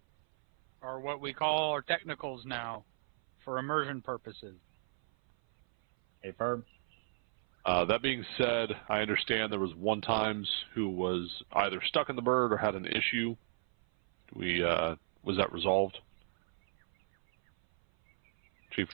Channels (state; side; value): silent; left; 55 dB below the other